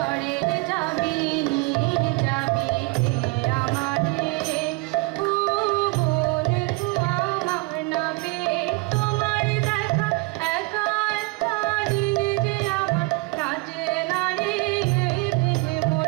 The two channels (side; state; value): left; quieter; 25.3 dB